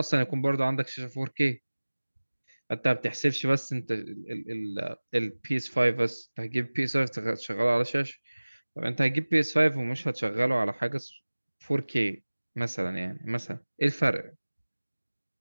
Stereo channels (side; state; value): both; inverted; correlation -1.00